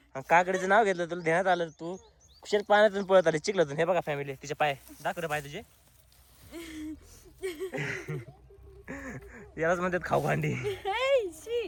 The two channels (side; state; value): both; identical; correlation 1.00